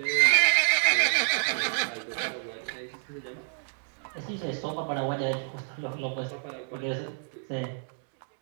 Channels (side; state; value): left; silent; digital silence